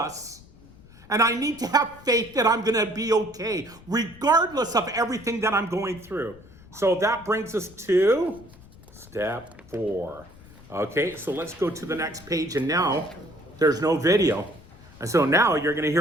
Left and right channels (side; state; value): left; noise; rumble, 22 dB below the sound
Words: And I need to have faith that I'm going to be okay, regardless of everything that I'm going through. So that brings us to step 4. Okay, so let's go to the next page. And now there's no video. And so now you're going to